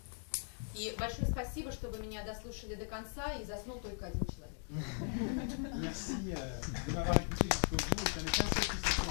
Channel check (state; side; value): silent; right; 52 dB below the other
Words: И большое спасибо, что вы меня дослушали до конца, и заснул только один человек. Merci de m'avoir écouté jusqu'au bout. Ça n'est qu'un seul qui